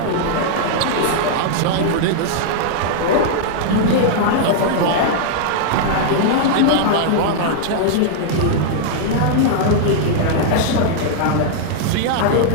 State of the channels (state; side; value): different; both; correlation -0.01